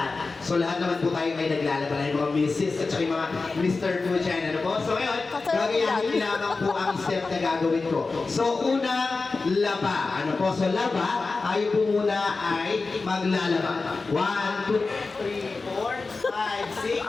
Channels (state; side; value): quieter; right; 3.9 dB